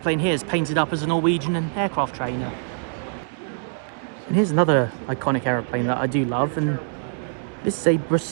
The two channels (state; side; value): silent; left; digital silence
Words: here is painted up as a Norwegian aircraft trainer. And here's another iconic aeroplane that I do love, and this is a